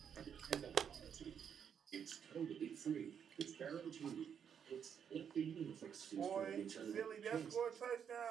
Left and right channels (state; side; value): quieter; left; 7.8 dB